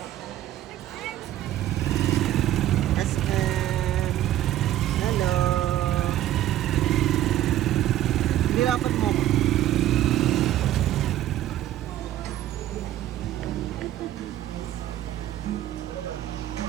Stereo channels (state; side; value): quieter; left; 13.1 dB